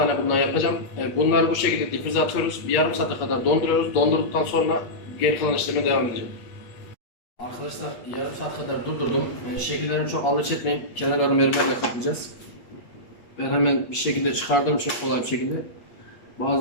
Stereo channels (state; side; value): late; right; 8.4 ms